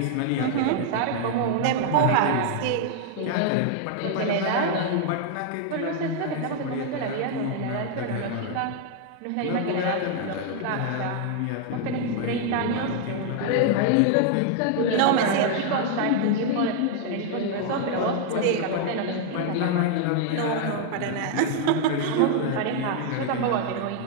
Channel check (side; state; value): both; different; correlation 0.00